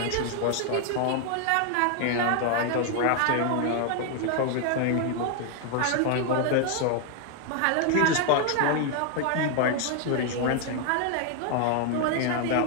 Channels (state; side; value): different; both; correlation 0.00